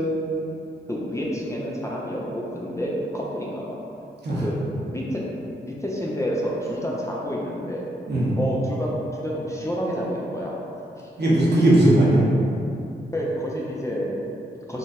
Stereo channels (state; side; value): normal; both; correlation 0.78